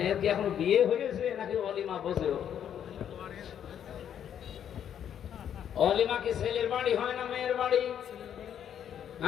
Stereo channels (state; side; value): quieter; right; 9.3 dB